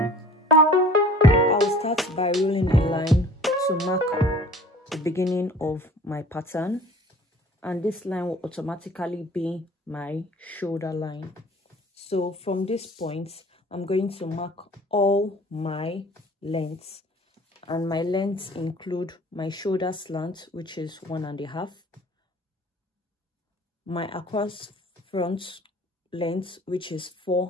I'll start by rolling a line to mark the beginning of my pattern, and this line will automatically be my shoulder line. So from this point, I'm going to mark all my lengths, and my lengths include my shoulder slant, which is 1.5, my across front length, which is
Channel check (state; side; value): normal; both; correlation 0.48